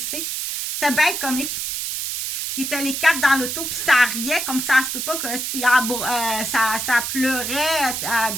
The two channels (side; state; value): right; noise; hiss, 3 dB below the sound